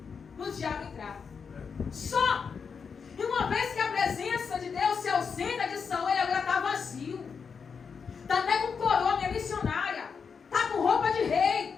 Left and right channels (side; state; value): right; quieter; 5.9 dB